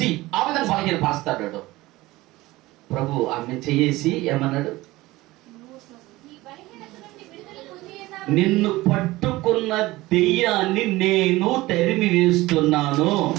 ఆ విధంగా బలహీనపరుస్తాడు ప్రభు. ఆమె చేసి ఏమన్నాడు? నిన్ను పట్టుకున్న దెయ్యాన్ని నేను తరిమి వేస్తున్నాను,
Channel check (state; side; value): quieter; left; 19.0 dB